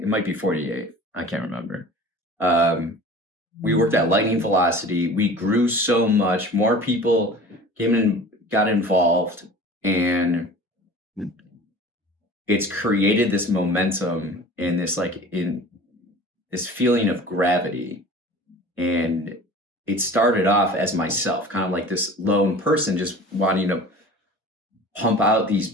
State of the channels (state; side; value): normal; both; correlation 0.41